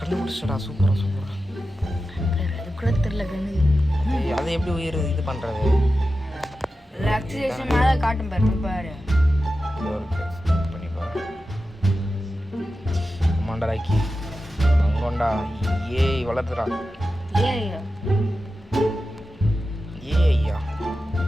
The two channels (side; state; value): both; normal; correlation 0.92